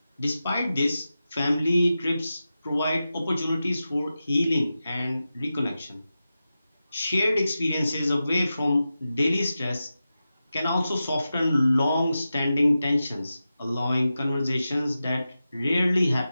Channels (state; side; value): inverted; both; correlation -0.92